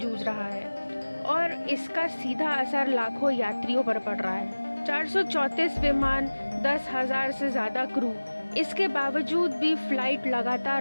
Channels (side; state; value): both; inverted; correlation -1.00